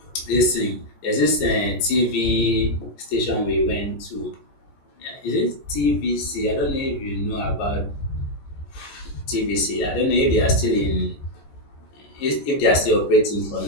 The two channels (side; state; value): right; late; 14 ms